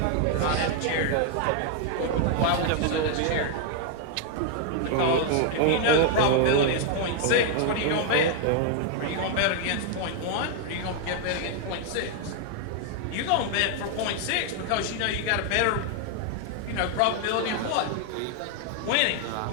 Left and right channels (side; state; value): both; different; correlation 0.00